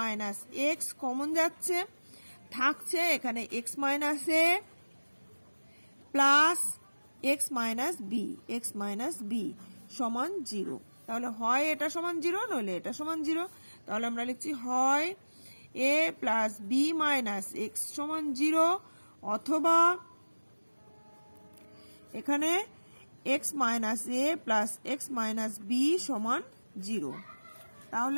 x common যাচ্ছে, থাকছে এখানে x minus a plus x minus b সমান 0। তাহলে হয় এটা সমান 0 নইলে এটা সমান 0। তাহলে আমরা লিখছি হয় a plus b minus x সমান 0 অথবা এখানে x minus a plus x minus b সমান 0।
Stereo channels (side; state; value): both; inverted; correlation -1.00